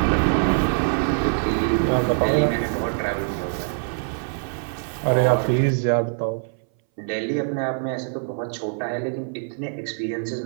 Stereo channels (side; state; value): left; silent; 60 dB below the other